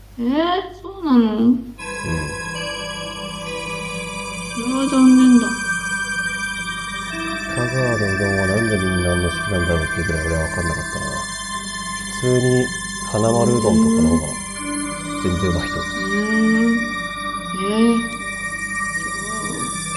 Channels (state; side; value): identical; both; correlation 1.00